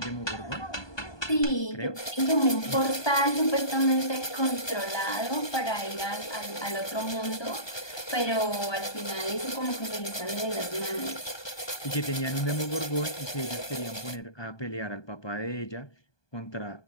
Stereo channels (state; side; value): late; right; 1.2 ms